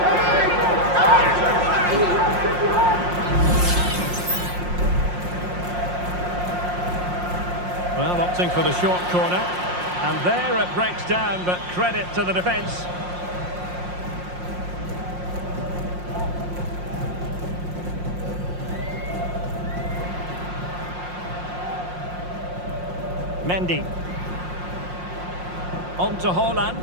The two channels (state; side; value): late; left; 5.6 ms